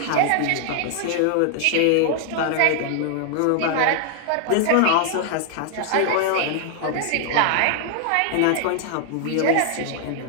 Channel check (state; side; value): different; both; correlation 0.00